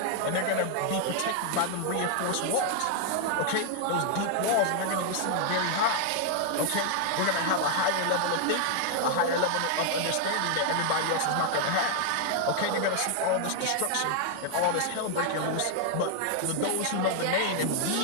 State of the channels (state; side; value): different; both; correlation 0.00